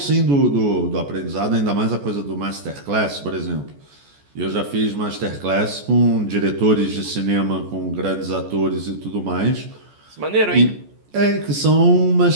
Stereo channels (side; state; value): left; late; 14 ms